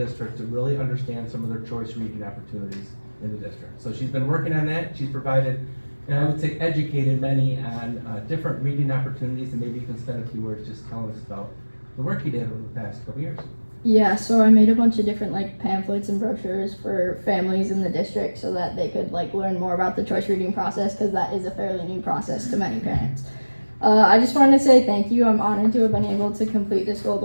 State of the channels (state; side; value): inverted; both; correlation -1.00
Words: to really understand some of their choice reading opportunities in the district. So she's been working on that. She's provided, and I would say educated many on different reading opportunities, and maybe you can spend a few words just telling us about the work you did over the past couple years. Yeah, so I made a bunch of different pamphlets and brochures for families in the district so that they could learn more about the choice reading process, because that is a fairly new process to many parents. I just wanted to say thank you. I'm honored to have been able to complete this Gold